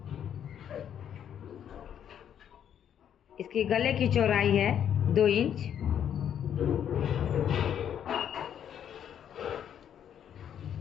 इसकी गले की चौड़ाई है 2 इंच।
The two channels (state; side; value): quieter; right; 9.3 dB